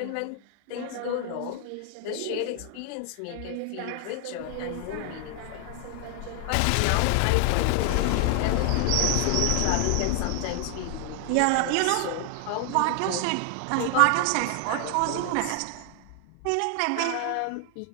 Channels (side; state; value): both; different; correlation 0.00